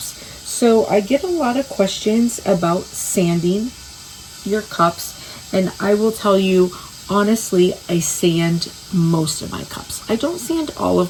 So I get a lot of questions about sanding your cups, and I will tell you honestly, I sand most of my cups. I don't sand all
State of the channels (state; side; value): identical; both; correlation 1.00